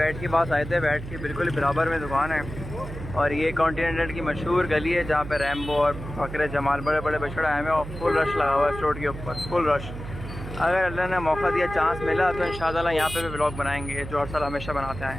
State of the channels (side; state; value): right; noise; hum, 10 dB below the sound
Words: के पास आए थे, बैट के बिल्कुल बराबर में दुकान है, और ये कॉन्टिनेंटल की मशहूर गली है जहाँ पे रैम्बो और बकरे जमाल बड़े बड़े बछड़े आए हैं, और फुल रश लगा हुआ है रोड के ऊपर, फुल रश। अगर अल्लाह ने मौका दिया, चांस मिला तो इंशाअल्लाह यहाँ पे भी व्लॉग बनाएंगे जो हर साल हमेशा बनाते